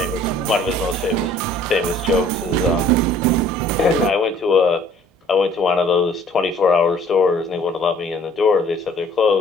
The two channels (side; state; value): both; normal; correlation 0.55